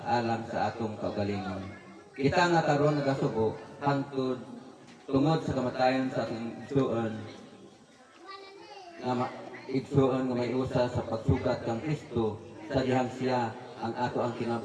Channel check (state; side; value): identical; both; correlation 1.00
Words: alang sa atong kaugalingon. Kita nga karon nagasubo hangtod tungod sa kamatayon sa atong igsuon. Igsuon nga may usa sa pagsugat kang Kristo sa dihang siya ang ato ang